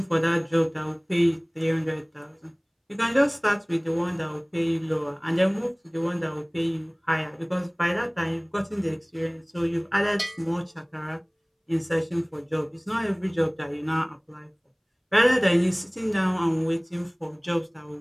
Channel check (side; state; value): both; identical; correlation 1.00